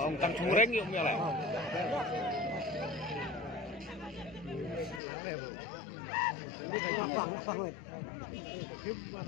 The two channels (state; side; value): drops out; right; at 5.0 s